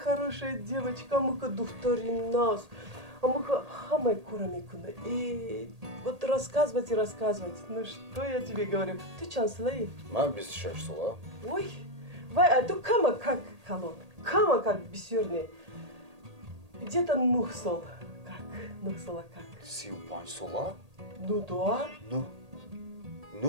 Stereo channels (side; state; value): left; late; 1.8 ms